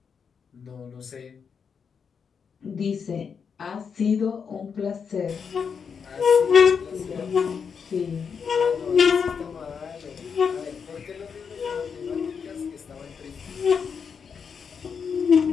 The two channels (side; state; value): right; quieter; 6.4 dB